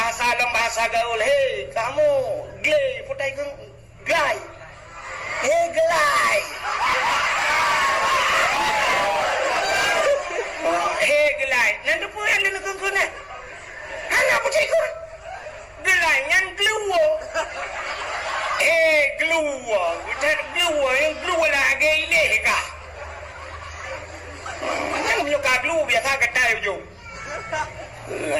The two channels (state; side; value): identical; both; correlation 1.00